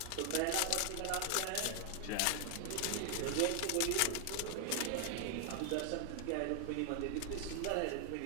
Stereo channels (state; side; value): different; both; correlation 0.00